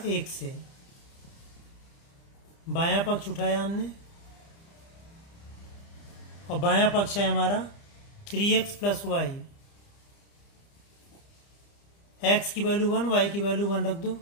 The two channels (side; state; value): right; late; 30 ms